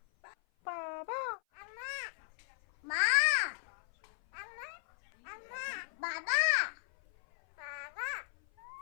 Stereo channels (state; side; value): silent; right; 54 dB below the other